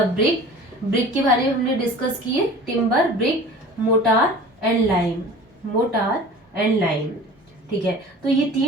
brick. Brick के बारे में हमने डिस्कस किए, timber, brick, mortar and lime. Motor and lime, ठीक है। तो ये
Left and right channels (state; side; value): normal; both; correlation 0.42